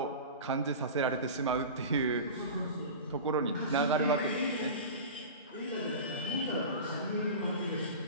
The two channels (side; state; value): both; inverted; correlation -0.32